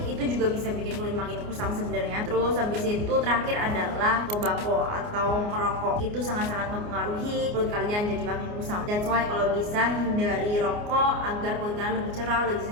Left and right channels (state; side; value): late; left; 29 ms